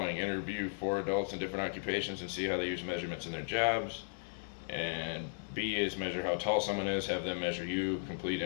interview 4 adults in different occupations and see how they use measurements in their jobs. And B is measure how tall someone is, have them measure you, complete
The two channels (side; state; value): right; silent; digital silence